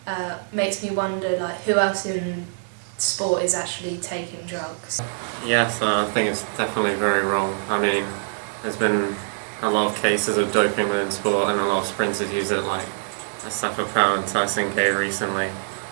makes me wonder who else in sport is actually taking drugs. Yes, I think it's definitely very wrong. I mean, there's been a lot of cases of doping within sport, and a lot of sprinters use it, like Asafa Powell and Tyson Gay recently,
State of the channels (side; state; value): left; silent; 63 dB below the other